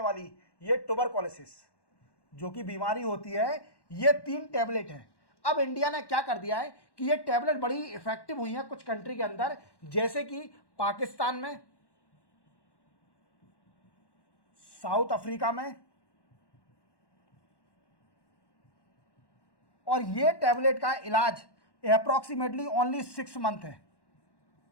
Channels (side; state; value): right; late; 1.1 ms